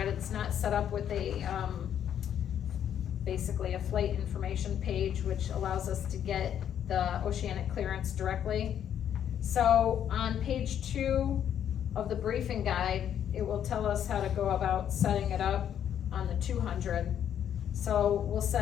it's not set up with basically a flight information page, which allows us to get the oceanic clearance directly. So on page 2 of the briefing guide, it will tell us how to go about setting it up on the 200. So we'll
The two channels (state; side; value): quieter; right; 9.6 dB